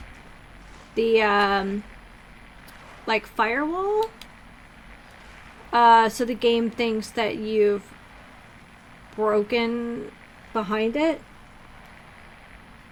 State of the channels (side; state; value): both; identical; correlation 1.00